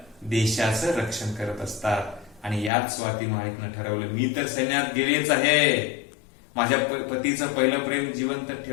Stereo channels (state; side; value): drops out; right; at 2.7 s